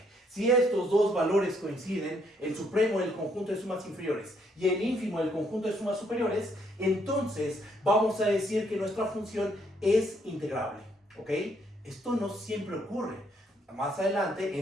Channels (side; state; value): both; normal; correlation 0.71